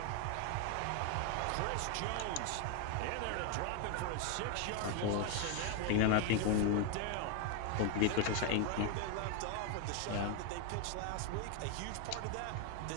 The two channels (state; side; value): different; both; correlation 0.01